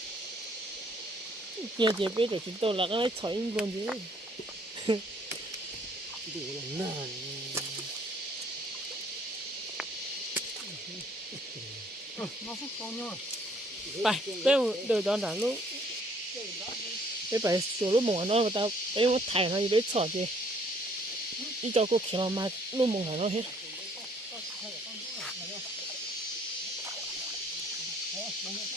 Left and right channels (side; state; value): both; normal; correlation 0.61